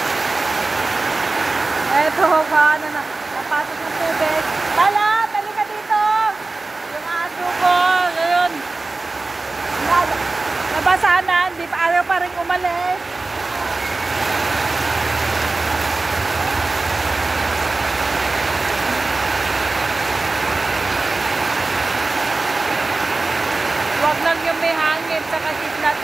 Eto, paano na, napasok ng tubig. Tala, tali ka dito! Yung aso ko, ngayon. Nabasahan na, hindi pa ayaw pa rin umalis. Huwag lang yung may hangin, saka kidlat,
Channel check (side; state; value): left; quieter; 3.4 dB